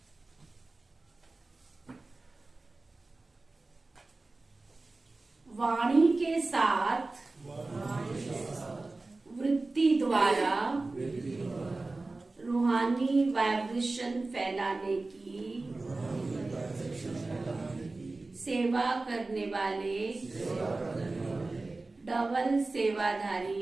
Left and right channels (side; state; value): left; quieter; 3.3 dB